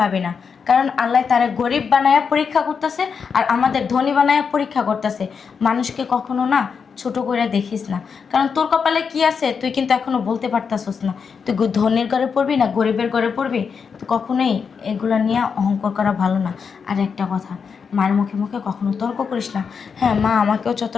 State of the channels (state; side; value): quieter; right; 6.0 dB